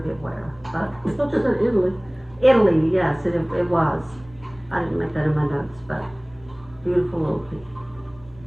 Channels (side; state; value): right; noise; rumble, 25 dB below the sound